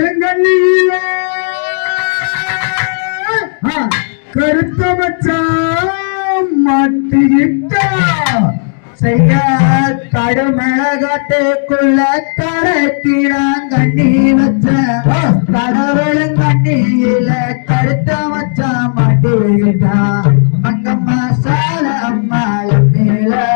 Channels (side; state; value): right; silent; digital silence